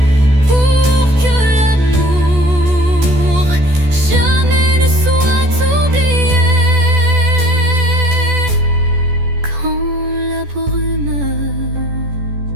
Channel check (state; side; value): late; left; 14 ms